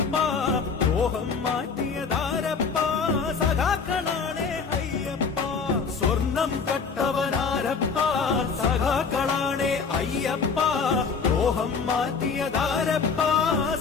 ദ്രോഹം മാറ്റിയതാരപ്പ സഖാക്കളാണേ അയ്യപ്പ സ്വർണം കട്ടവനാരപ്പ സഖാക്കളാണേ അയ്യപ്പ ദ്രോഹം മാറ്റിയതാരപ്പ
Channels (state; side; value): quieter; right; 5.4 dB